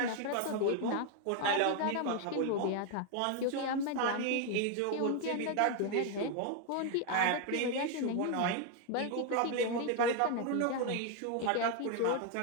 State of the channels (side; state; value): both; different; correlation 0.01